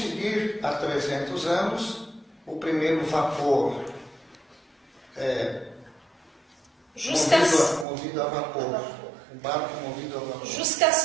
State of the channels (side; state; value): left; drops out; at 7.9 s